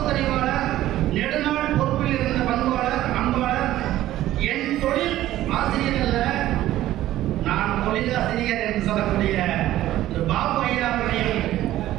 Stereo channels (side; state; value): left; quieter; 14.2 dB